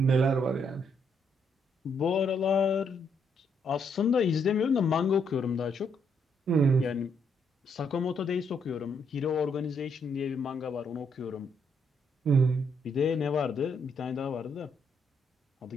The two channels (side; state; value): both; normal; correlation 0.74